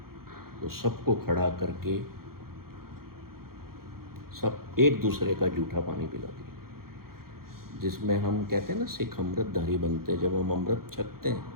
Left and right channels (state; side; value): late; left; 0.93 ms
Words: तो सबको खड़ा करके सब एक दूसरे का जूठा पानी पिला दिया। जिसमें हम कहते हैं ना सिख अमृतधारी बनते हैं। जब हम अमृत छकते हैं